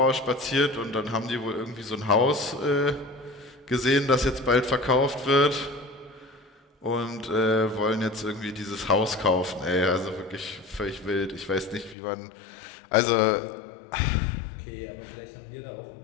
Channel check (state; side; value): drops out; right; at 12.0 s